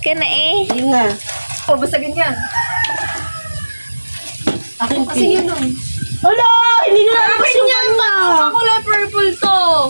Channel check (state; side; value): inverted; both; correlation -1.00